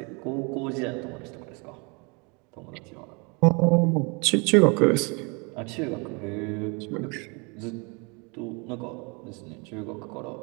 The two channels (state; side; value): quieter; left; 31.5 dB